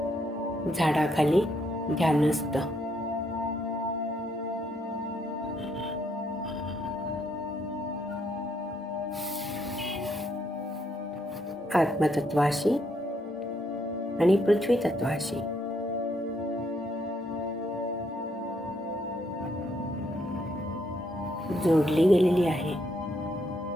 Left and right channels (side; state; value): both; normal; correlation 0.74